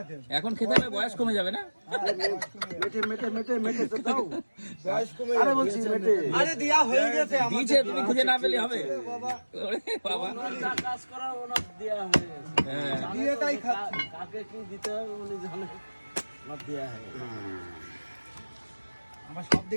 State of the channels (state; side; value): inverted; both; correlation -1.00